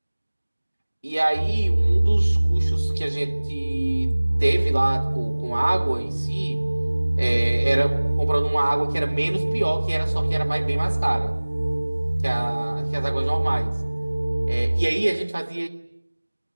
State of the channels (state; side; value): inverted; both; correlation -1.00